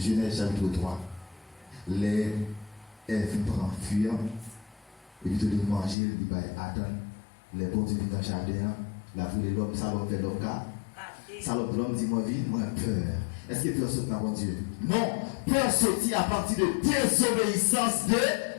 chapitre 3. Les Ève prend fuir, et puis de manger, il va attendre. Les bons viennent dans le jardin, la vie de l'homme, ça l'homme fait l'homme car. Ça l'homme dit, moi, vie, moi, peur. Est-ce que peur saute dans mon Dieu? Non, peur sortit à partir de désobéissance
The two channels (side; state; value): right; drops out; at 6.0 s